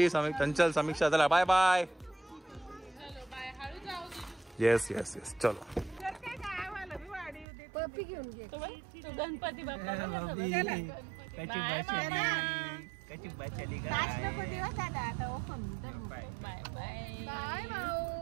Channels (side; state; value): left; drops out; at 7.5 s